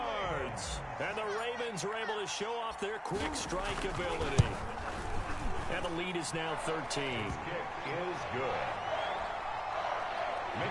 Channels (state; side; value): identical; both; correlation 1.00